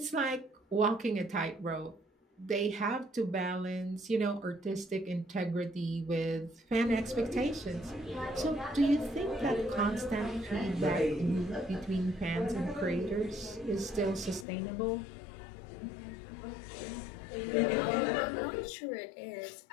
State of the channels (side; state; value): right; drops out; at 14.5 s